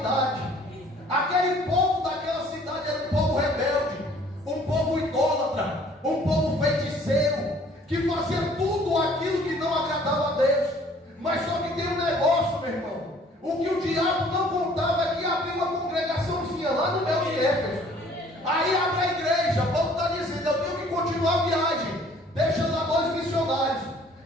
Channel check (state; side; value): normal; both; correlation 0.56